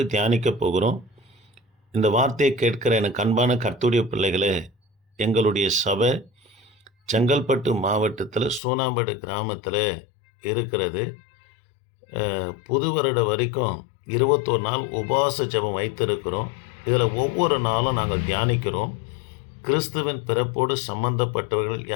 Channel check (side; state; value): right; drops out; at 8.6 s